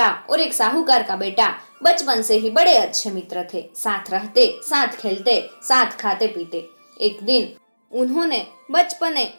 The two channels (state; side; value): inverted; both; correlation -1.00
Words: और एक साहूकार का बेटा बचपन से ही बड़े अच्छे मित्र थे। साथ रहते, साथ खेलते, साथ खाते पीते। एक दिन उन्होंने बचपने